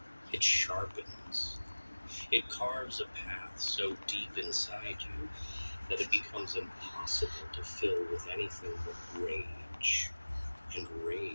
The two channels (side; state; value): both; inverted; correlation -1.00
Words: It sharpens. It carves a path so deep inside you that it becomes impossible to fill with anything but rage. And